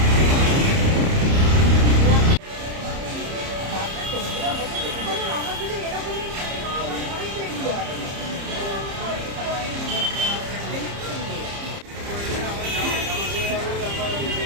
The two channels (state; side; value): late; left; 30 ms